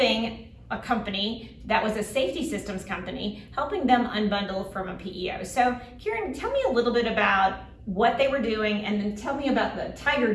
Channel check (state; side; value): identical; both; correlation 1.00